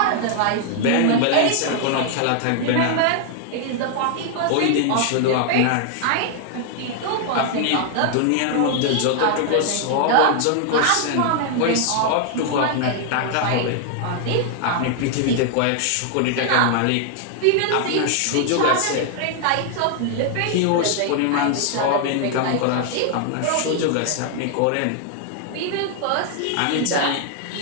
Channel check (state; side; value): different; both; correlation 0.00